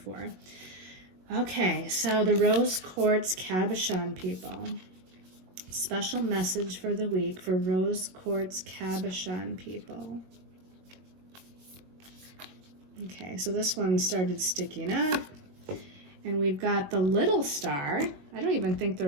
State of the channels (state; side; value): late; left; 21 ms